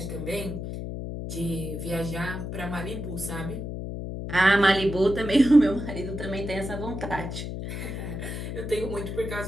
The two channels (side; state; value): left; noise; hum, 6 dB below the sound